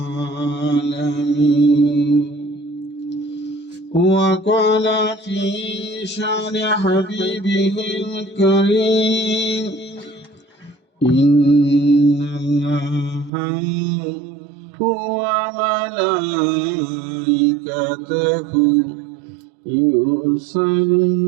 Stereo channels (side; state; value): left; drops out; at 13.3 s